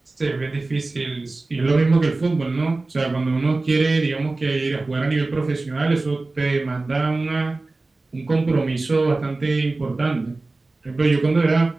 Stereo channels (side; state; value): left; quieter; 3.3 dB